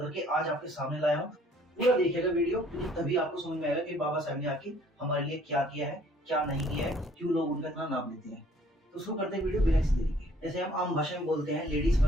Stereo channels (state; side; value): normal; both; correlation 0.59